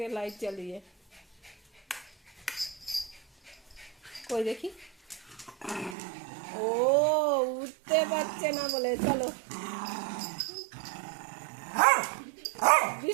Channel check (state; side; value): drops out; left; at 6.0 s